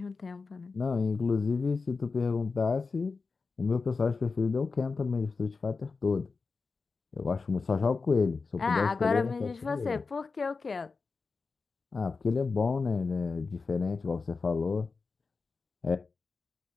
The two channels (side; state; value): right; quieter; 4.4 dB